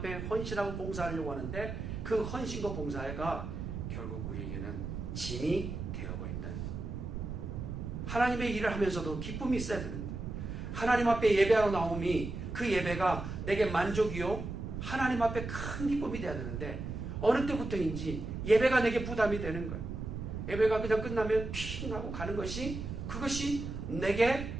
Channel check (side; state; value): right; noise; rumble, 6 dB below the sound